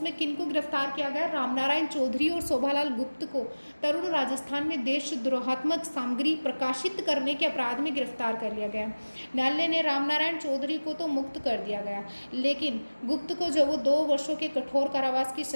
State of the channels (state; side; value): inverted; both; correlation -1.00